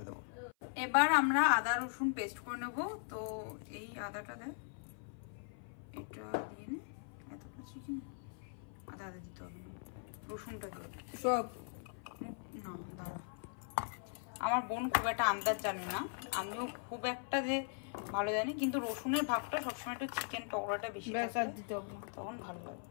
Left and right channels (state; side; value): silent; right; 51 dB below the other